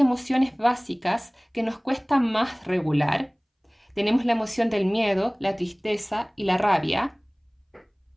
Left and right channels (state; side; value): identical; both; correlation 1.00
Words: básicas que nos cuesta más regular. Tenemos la emoción del miedo, la tristeza y la rabia.